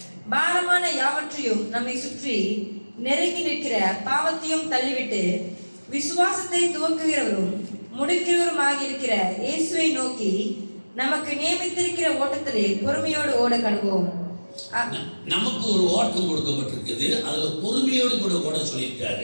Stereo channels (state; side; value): inverted; both; correlation -1.00